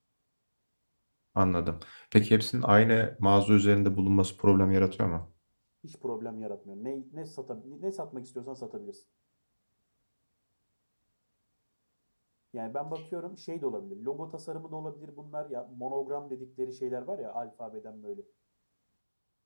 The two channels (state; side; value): inverted; both; correlation -1.00